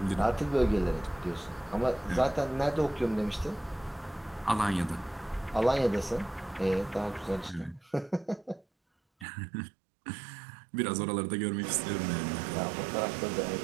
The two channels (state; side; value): drops out; left; at 9.2 s